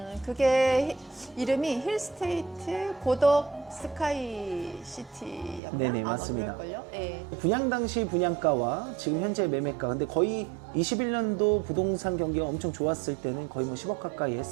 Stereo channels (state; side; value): drops out; left; at 5.6 s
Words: 그게 이름이 힐스테이트 고덕 스카이시티였나? 네네, 맞습니다. 그럴걸요? 네. 분양 당시 분양가와 지금 현재 매매가 근데 거의 21년도 부동산 경기가 엄청 좋았을 때는 거의 뭐 10억 가까이